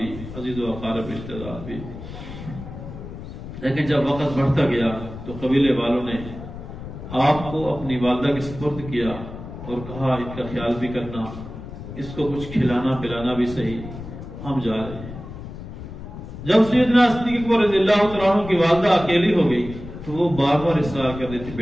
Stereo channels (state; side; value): noise; left; rumble, 11 dB below the sound